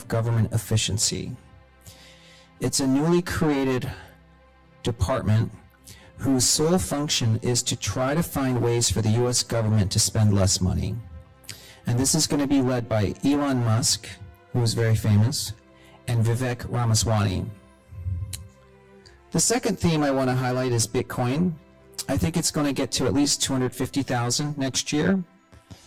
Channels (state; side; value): identical; both; correlation 1.00